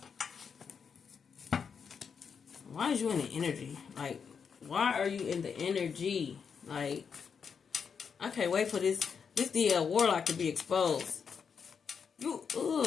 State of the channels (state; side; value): quieter; right; 6.4 dB